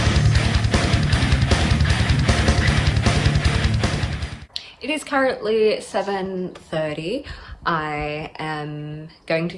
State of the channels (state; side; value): identical; both; correlation 1.00